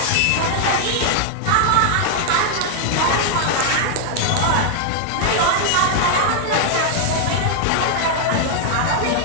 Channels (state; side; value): different; both; correlation 0.00